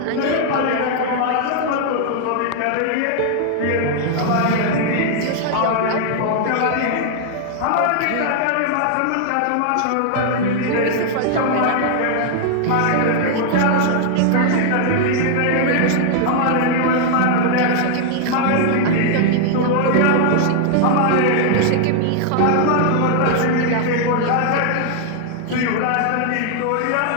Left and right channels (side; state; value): both; different; correlation 0.00